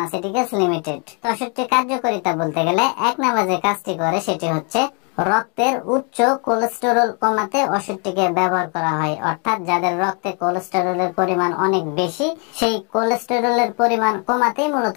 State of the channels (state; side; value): quieter; right; 36.1 dB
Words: লিমিটেড। তো ওষুধটির কার্যকারিতা বলতে গেলে 1 নাম্বার যে কাজটি করে সেটি হচ্ছে রক্তের উচ্চ কোলেস্টেরল কমাতে ওষুধটিকে ব্যবহার করা হয়। অর্থাৎ যাদের রক্তে কোলেস্টেরলের পরিমাণ অনেক বেশি, সেই কোলেস্টেরলের পরিমাণ কমাতেই মূলত